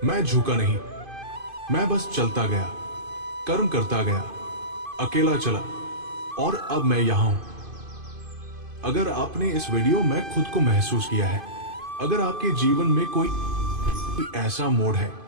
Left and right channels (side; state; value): left; late; 2.5 ms